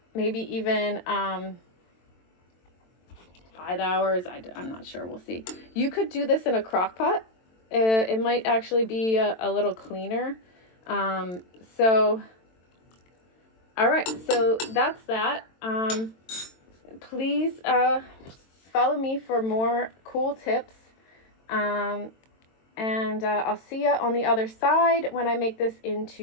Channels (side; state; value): right; late; 22 ms